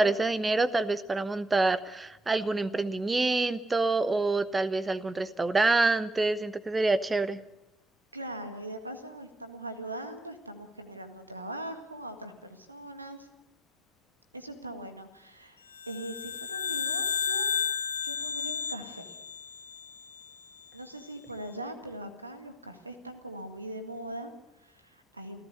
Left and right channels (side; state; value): both; normal; correlation 0.61